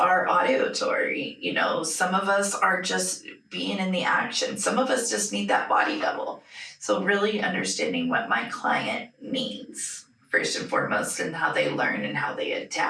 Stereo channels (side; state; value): both; identical; correlation 1.00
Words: auditory, some of us are just being in the action, some of us just need that body double. So really understanding what my client needs first and foremost, and how they learn and how they